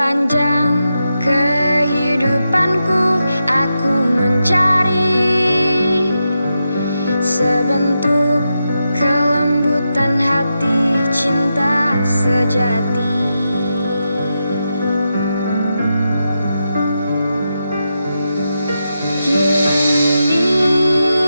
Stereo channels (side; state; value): both; inverted; correlation -0.87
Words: kehidupanku aku mencari sebentuk kelembutan hati cinta sejati.